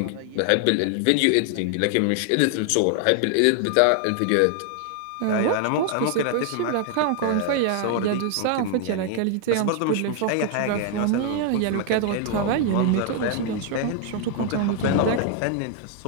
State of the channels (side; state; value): both; different; correlation 0.00